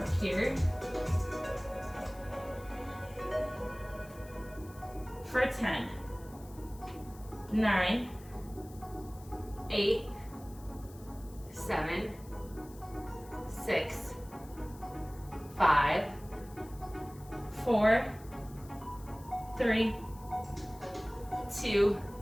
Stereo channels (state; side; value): noise; left; hiss, 22 dB below the sound